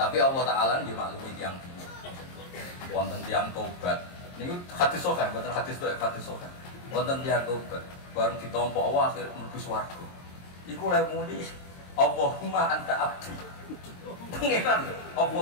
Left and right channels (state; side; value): late; right; 22 ms